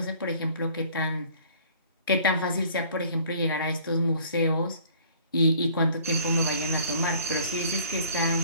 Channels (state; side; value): inverted; both; correlation -0.54